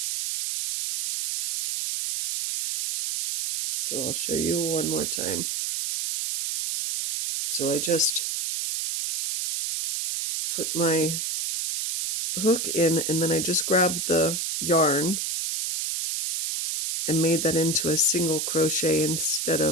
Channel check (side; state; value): right; noise; hiss, 1 dB below the sound